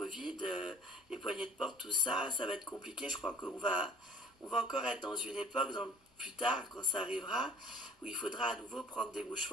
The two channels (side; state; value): both; normal; correlation 0.49